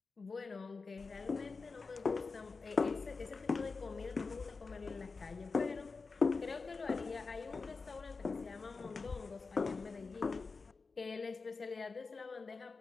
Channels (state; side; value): quieter; right; 4.4 dB